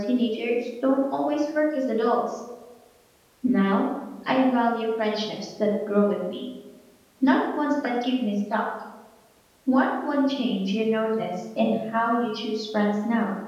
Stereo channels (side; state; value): both; identical; correlation 1.00